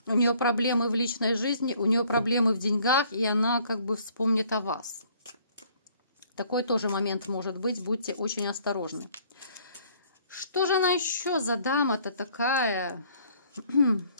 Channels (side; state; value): both; inverted; correlation -0.60